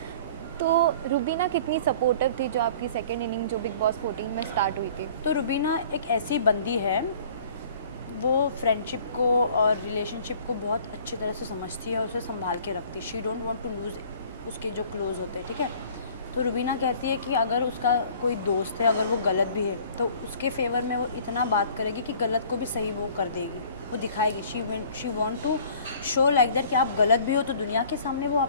तो रुबीना कितनी सपोर्टिव थी जो आपकी सेकेंड इनिंग जो बिग बॉस 14 में स्टार्ट हुई थी? तो रुबीना एक ऐसी बंदी है, वो फ्रेंडशिप को और रिलेशनशिप को बहुत अच्छी तरह से समझती है और उसे संभाल के रखती है। She don't want to lose उसके जो क्लोज होते हैं, ठीक है। तो रुबीना कहती है कि अगर उसका कोई दोस्त है, अगर वो गलत भी है, तो उसके फेवर में वो इतना बात करेगी कि गलत को भी सही वो कर देगी, वो दिखाएगी। She want to show like that कि आप गलत भी हो तो दुनिया के सामने वो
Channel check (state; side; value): inverted; both; correlation -0.51